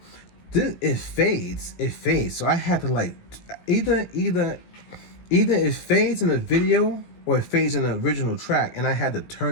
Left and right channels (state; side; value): late; right; 17 ms